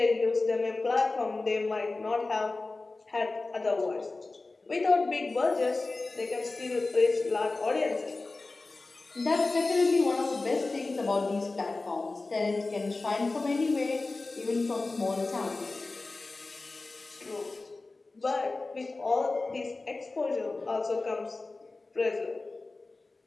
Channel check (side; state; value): right; quieter; 3.4 dB